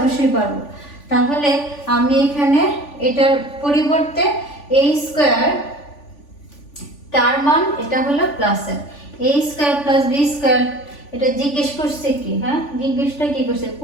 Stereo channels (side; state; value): right; late; 3.5 ms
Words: পারবো। তাহলে আমি এখানে এটার পরিবর্তে a স্কয়ার তার মান এটা হলো প্লাসের a square plus B square, এটা জিজ্ঞেস করছে কি, হ্যাঁ জিজ্ঞেসটা কি করছে,